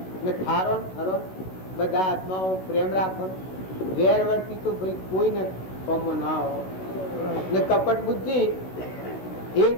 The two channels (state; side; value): late; right; 16 ms